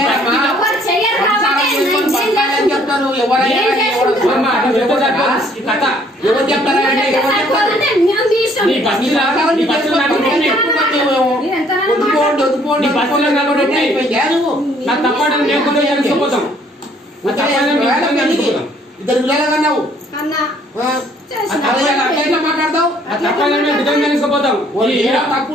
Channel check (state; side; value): normal; both; correlation 0.62